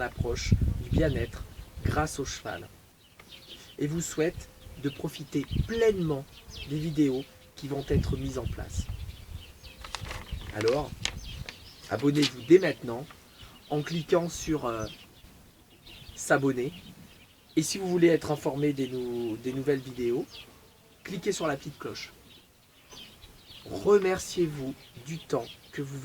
du bien-être grâce au cheval. Et vous souhaite de profiter pleinement des vidéos qui vont être mises en place. Alors, abonnez-vous dès maintenant en cliquant sur s'abonner. Et si vous voulez être informé des nouvelles vidéos, cliquez sur la petite cloche. Remerciez-vous du temps que vous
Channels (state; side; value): identical; both; correlation 1.00